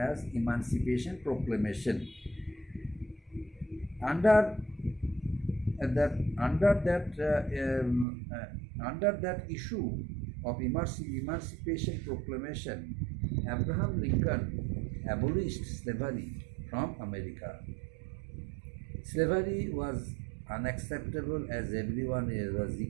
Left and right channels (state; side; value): drops out; left; at 8.1 s